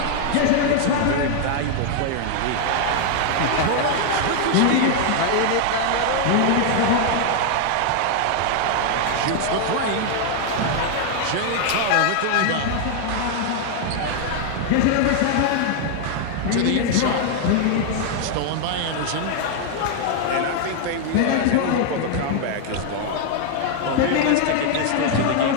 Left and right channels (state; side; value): different; both; correlation 0.00